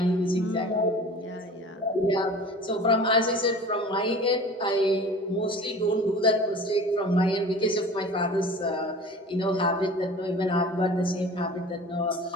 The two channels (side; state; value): both; normal; correlation 0.41